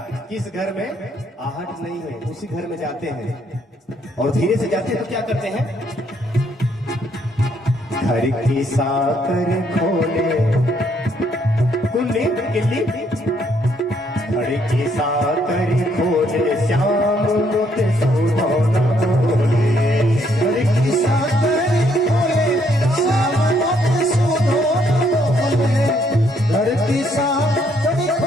किस घर में आहट नहीं है, उसी घर में जाते हैं और धीरे से जाते हैं तो क्या करते हैं, घर की साकर खोले कुल्ली किल्ली, घर की साकर खोले श्याम मुत सुधोना बोले। घर की साकर खोले श्याम मुत सुधोना बोले। घर की साकर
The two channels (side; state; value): both; normal; correlation 0.70